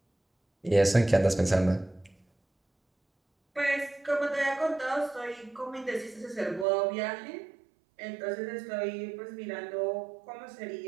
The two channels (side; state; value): left; drops out; at 6.7 s